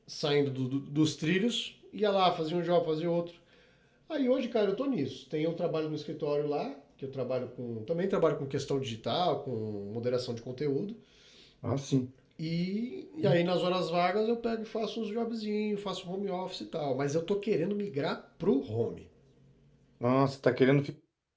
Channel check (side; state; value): both; identical; correlation 1.00